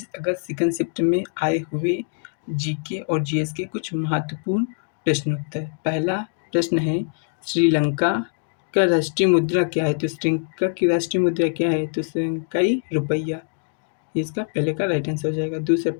अगस्त सेकंड शिफ्ट में आए हुए जीके और जीएस के कुछ महत्वपूर्ण प्रश्नोत्तर। पहला प्रश्न है, श्रीलंका का राष्ट्रीय मुद्रा क्या है? तो श्रीलंका की राष्ट्रीय मुद्रा क्या है? तो श्रीलंकाई रुपया। इसका पहले का राइट आंसर हो जाएगा। दूसरा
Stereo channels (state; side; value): silent; right; 59 dB below the other